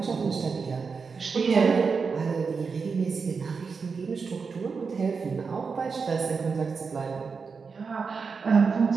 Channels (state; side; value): quieter; left; 5.2 dB